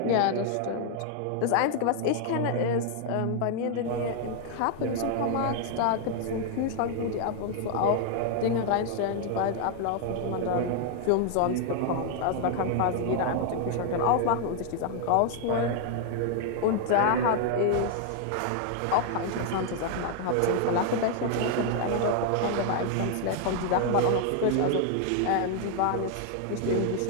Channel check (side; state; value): both; different; correlation 0.00